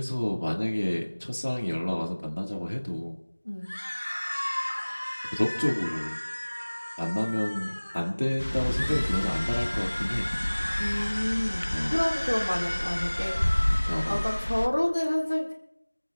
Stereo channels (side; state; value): both; inverted; correlation -1.00